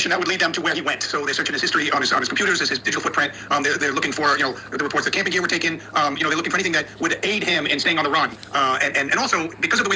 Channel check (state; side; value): identical; both; correlation 1.00